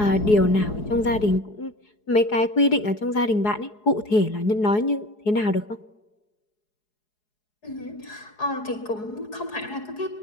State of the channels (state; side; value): late; right; 4.7 ms